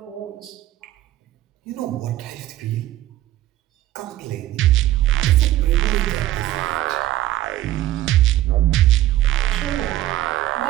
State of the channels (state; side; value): quieter; left; 14.5 dB